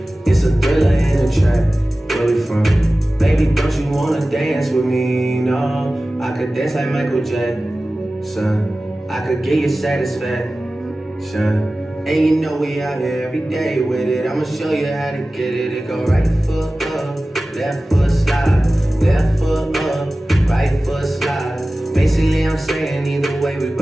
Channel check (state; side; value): normal; both; correlation 0.96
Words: It's a thriller in the track. Where we from? Baby, don't you wanna dance with me? No, I could dance like Michael Jackson. I could get you satisfaction. And you know we out here every day with it. I'ma show you how to get it. It go right foot up, left foot slide, left foot up, right foot slide. Basically I'm saying either way we